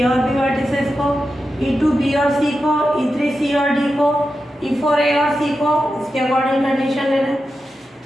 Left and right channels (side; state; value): both; normal; correlation 0.90